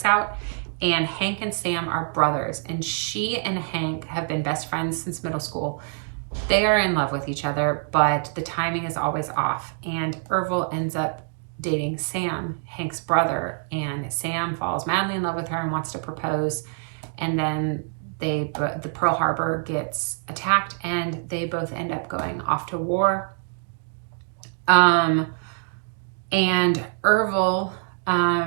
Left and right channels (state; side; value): silent; left; 56 dB below the other